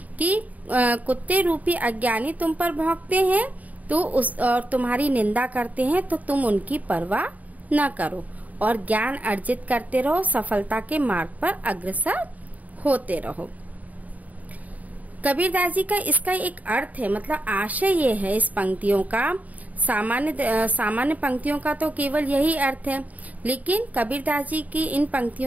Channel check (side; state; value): left; late; 0.074 ms